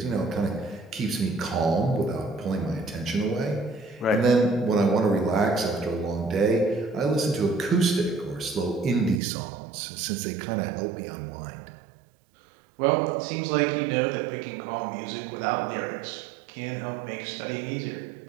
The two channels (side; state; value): left; drops out; at 9.2 s